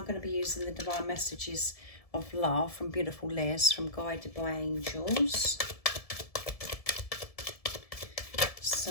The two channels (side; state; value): right; late; 1.7 ms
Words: going to be using the Divine Messages of Love from Beautiful Liz, from Guided by Angels.